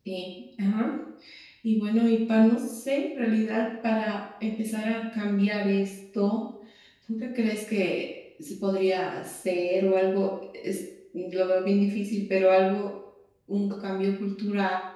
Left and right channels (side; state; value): both; identical; correlation 1.00